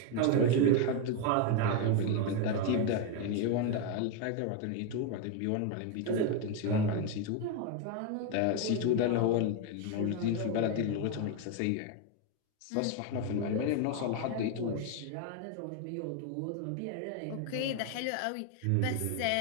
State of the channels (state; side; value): different; both; correlation 0.01